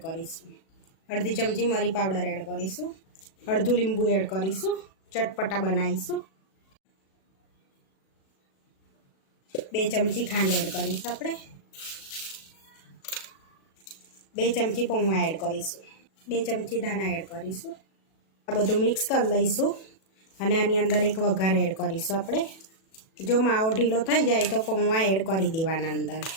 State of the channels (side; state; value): right; late; 37 ms